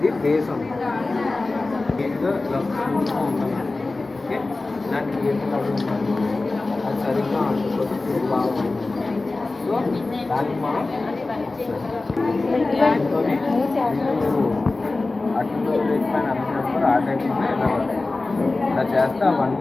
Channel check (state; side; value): quieter; right; 3.3 dB